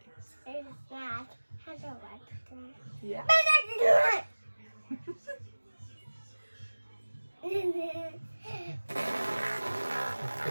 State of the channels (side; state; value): both; inverted; correlation -1.00